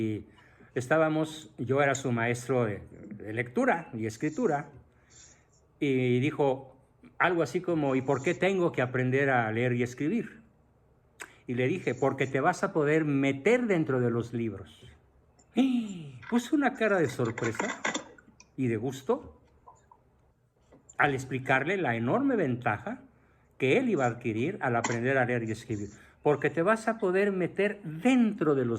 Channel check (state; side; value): identical; both; correlation 1.00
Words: yo era su maestro de lectura y escritura, y dijo algo así como, ¿y por qué tengo que aprender a leer y escribir? Y le dije, porque te vas a poder meter dentro de los libros. Y puso una cara de sorpresa y de gusto al explicarle la enorme ventaja que él iba a adquirir al aprender a leer y escribir, porque te vas a poder meter dentro de